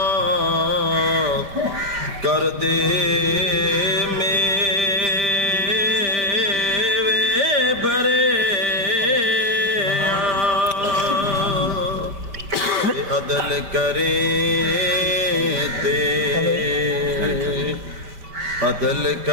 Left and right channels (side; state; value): left; late; 5.1 ms